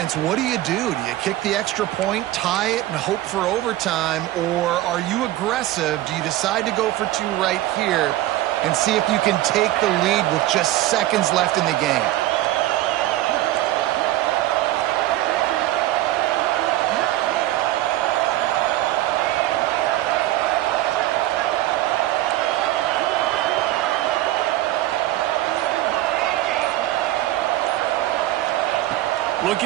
what do? Do you kick the extra point, tie it, and hope for overtime? Or are you aggressive? Do you decide to go for two right here and see if you can take the lead with just seconds left in the game?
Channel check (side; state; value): left; quieter; 15.4 dB